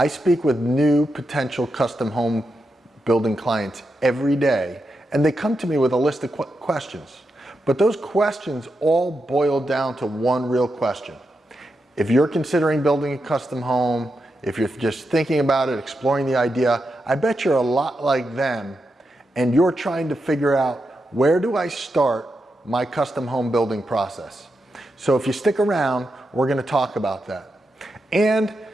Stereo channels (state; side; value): normal; both; correlation 0.86